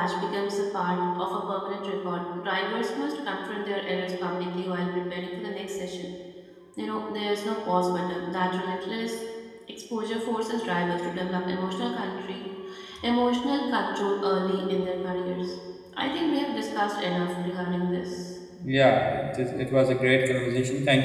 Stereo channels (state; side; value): identical; both; correlation 1.00